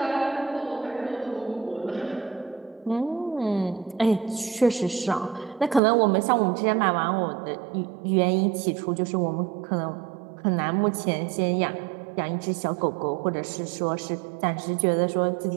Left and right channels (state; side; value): drops out; left; at 5.8 s